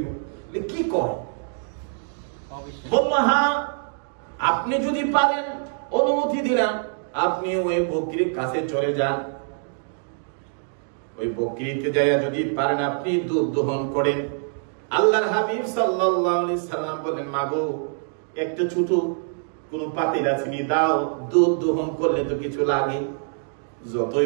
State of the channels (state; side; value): silent; left; digital silence